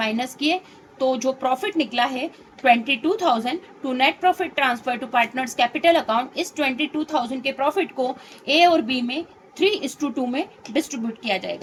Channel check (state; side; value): identical; both; correlation 1.00